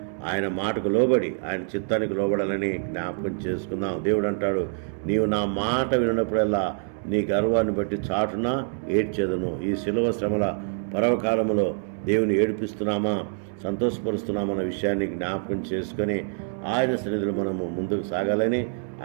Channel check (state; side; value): silent; left; 61 dB below the other